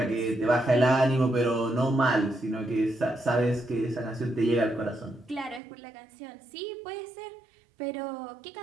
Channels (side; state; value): left; drops out; at 5.6 s